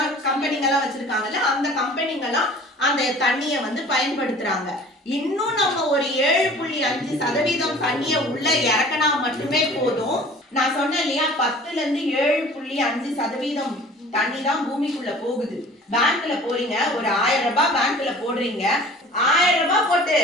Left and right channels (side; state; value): both; normal; correlation 0.46